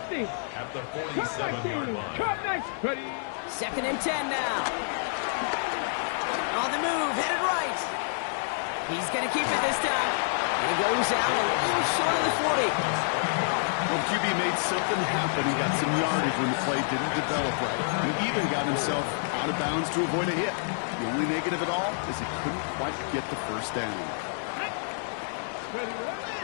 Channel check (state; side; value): silent; right; 59 dB below the other